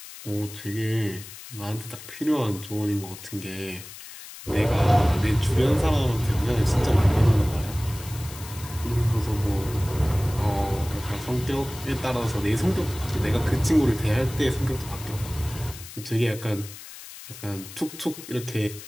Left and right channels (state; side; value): noise; left; hiss, 15 dB below the sound